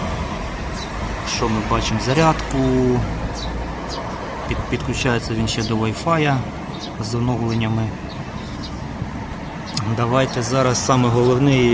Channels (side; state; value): both; identical; correlation 1.00